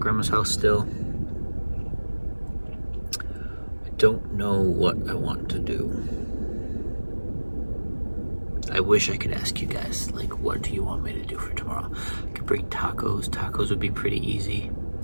house still. I don't know what I want to do. I wish I could ask you guys, like, what do you want me to do for tomorrow? I could bring tacos. Tacos would be pretty easy.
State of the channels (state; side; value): inverted; both; correlation -1.00